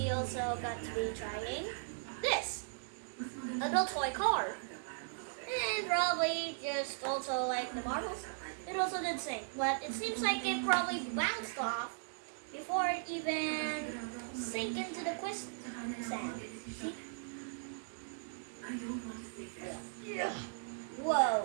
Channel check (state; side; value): silent; left; digital silence